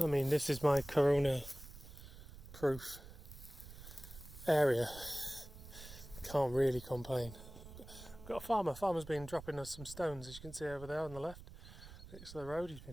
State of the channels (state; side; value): noise; right; rumble, 15 dB below the sound